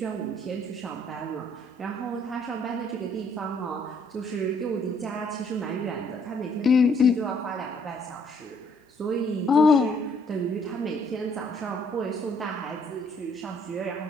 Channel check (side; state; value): both; normal; correlation 0.65